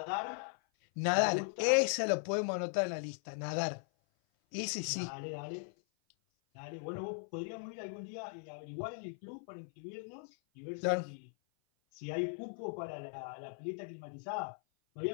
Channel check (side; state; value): right; silent; 52 dB below the other